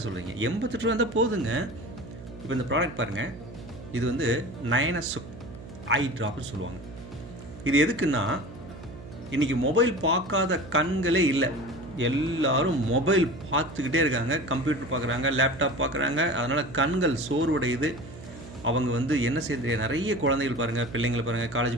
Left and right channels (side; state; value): right; noise; hum, 15 dB below the sound